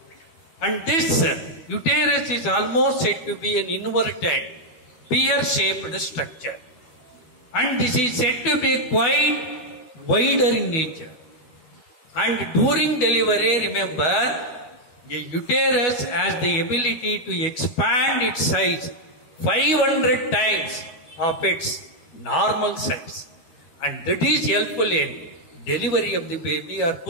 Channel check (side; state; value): right; late; 13 ms